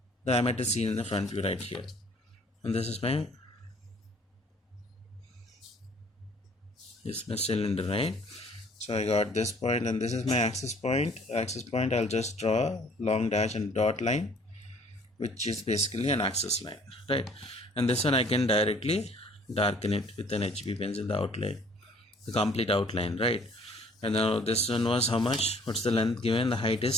diameter is seen in the front view right here, and this is my cylinder, right? So I got this point, and this is my axis point. I'll just draw a long dash and dot line, which is basically an axis line, right? And this one I can directly darken it with an HB pencil, the outline, the complete outline, right? And now this one was how much? What's the length given? The height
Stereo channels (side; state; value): both; normal; correlation 0.56